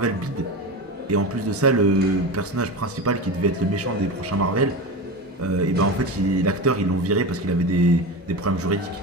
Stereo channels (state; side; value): normal; both; correlation 0.24